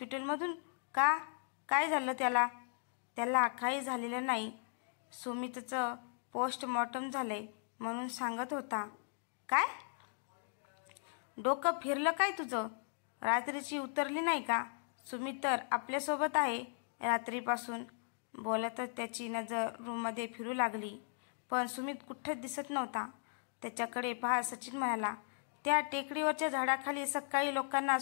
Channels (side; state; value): right; silent; digital silence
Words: का? काय झालं त्याला? त्याला काही झालेलं नाही. सुमितचं पोस्टमॉर्टम झालंय म्हणून सांगत होता. काय? डोकं फिरलं काय तुझं? रात्रीची उतरली नाही का? सुमित तर आपल्यासोबत आहे रात्रीपासून. बोलतच त्याची नजर रूममध्ये फिरू लागली, पण सुमित कुठंच दिसत नव्हता. त्याच्याकडे पाहत सचिन म्हणाला, त्या टेकडीवरच्या झाडाखाली सकाळी लोकांना